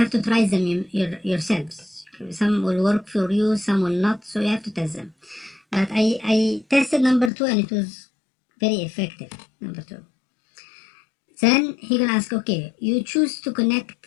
to try them yourselves. Some will work for you, some will not, so you have to test them. But I tested number 2 and it was very effective, number 2. Then he gonna ask, okay, you choose to connect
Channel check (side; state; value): right; drops out; at 7.3 s